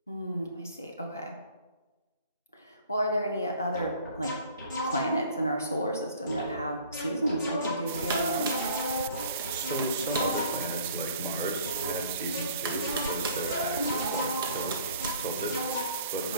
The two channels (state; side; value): inverted; both; correlation -0.51